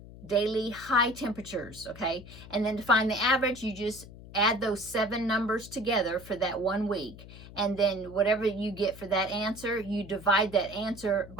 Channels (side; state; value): left; noise; hum, 16 dB below the sound